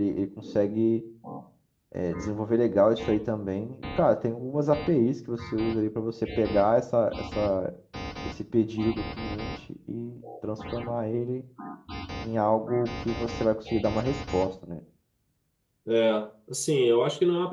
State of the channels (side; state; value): both; identical; correlation 1.00